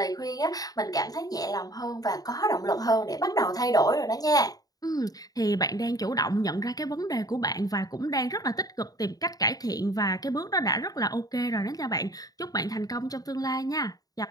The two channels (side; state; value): right; late; 0.18 ms